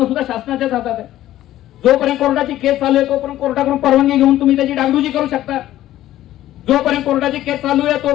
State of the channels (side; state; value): right; quieter; 13.8 dB